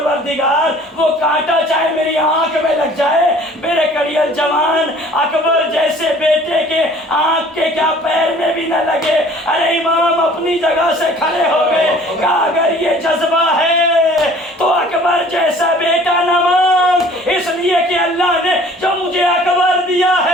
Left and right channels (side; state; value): both; normal; correlation 0.51